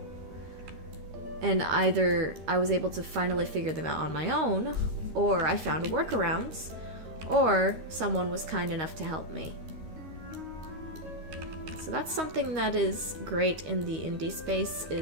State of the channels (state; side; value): late; left; 13 ms